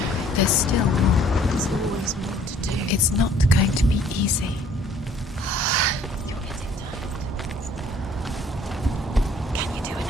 There's still more. There's always more to do. It's not going to be easy. You're getting tired. Can you do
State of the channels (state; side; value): normal; both; correlation 0.57